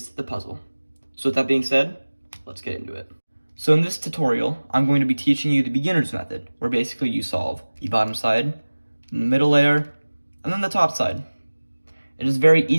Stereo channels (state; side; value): inverted; both; correlation -1.00